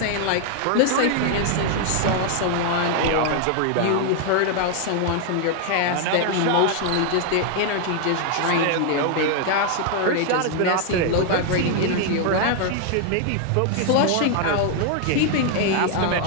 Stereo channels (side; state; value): both; different; correlation 0.00